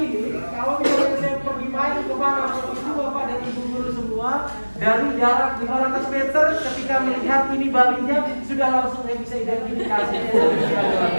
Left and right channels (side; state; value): both; inverted; correlation -1.00